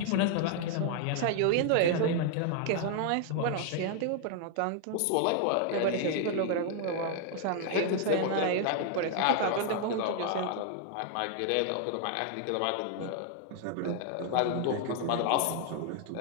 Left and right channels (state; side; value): different; both; correlation 0.00